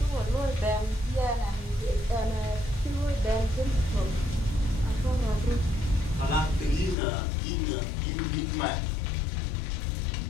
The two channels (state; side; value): drops out; right; at 7.0 s